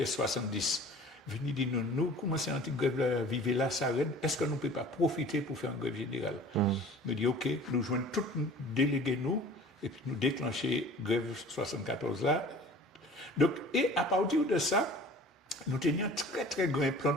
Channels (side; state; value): both; normal; correlation 0.45